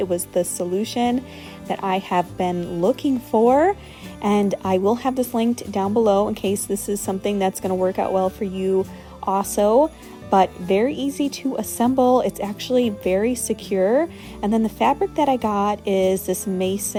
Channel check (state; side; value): identical; both; correlation 1.00